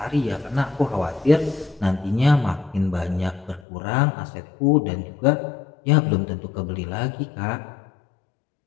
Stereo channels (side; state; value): right; drops out; at 3.7 s